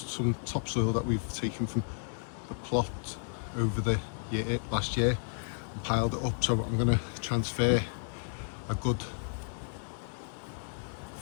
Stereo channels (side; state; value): right; silent; 56 dB below the other